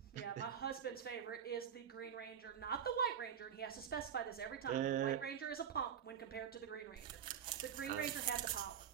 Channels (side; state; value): left; quieter; 8.5 dB